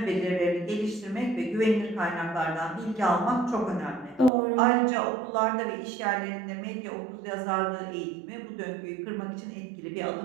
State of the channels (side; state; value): left; drops out; at 4.3 s